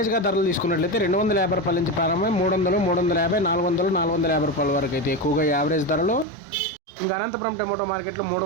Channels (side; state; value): left; drops out; at 6.2 s